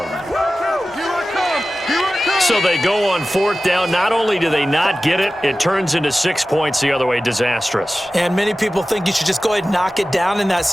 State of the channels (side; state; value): both; normal; correlation 0.95